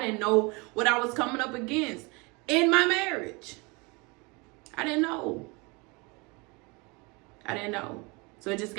know what I was coming up against in my marriage. I didn't know. So it just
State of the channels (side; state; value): left; quieter; 28.0 dB